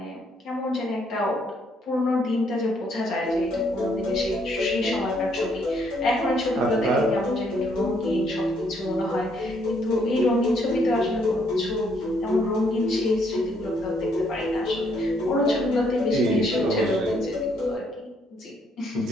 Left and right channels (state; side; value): normal; both; correlation 0.70